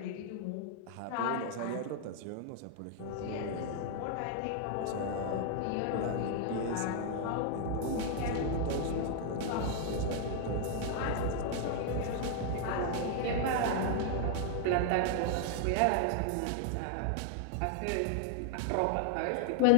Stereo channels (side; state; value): both; different; correlation 0.00